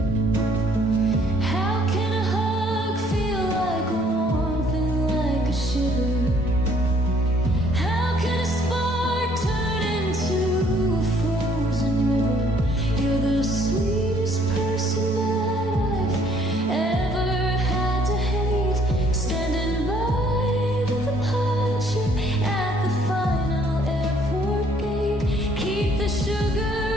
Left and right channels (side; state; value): both; normal; correlation 0.62